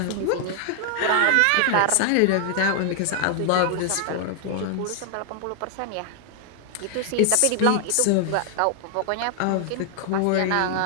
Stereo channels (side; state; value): both; different; correlation 0.00